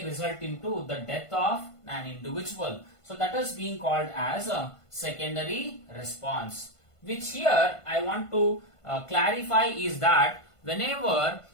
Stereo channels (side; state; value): right; late; 1.5 ms